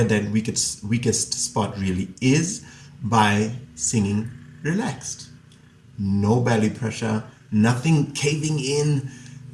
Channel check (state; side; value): identical; both; correlation 1.00